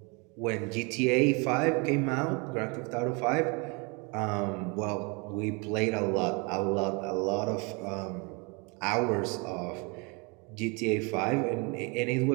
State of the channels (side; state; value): left; quieter; 30.8 dB